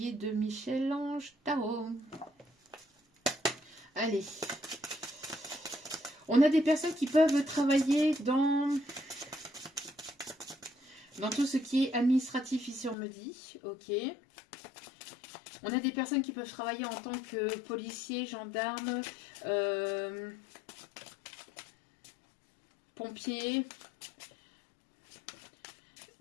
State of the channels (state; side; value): drops out; right; at 13.0 s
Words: est de Michel-Ange Tarot. Allez. On a des personnes qui peuvent travailler dans tout ce qui est administratif, ici on me dit. Ok. On a des personnes qui peuvent travailler en tant que policiers, gendarmes, pompiers,